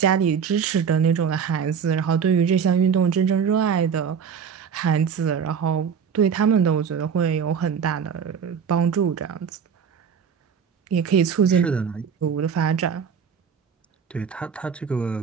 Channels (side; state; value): left; quieter; 7.0 dB